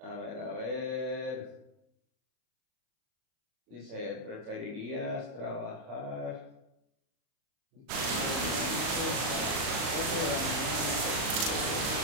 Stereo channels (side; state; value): left; late; 38 ms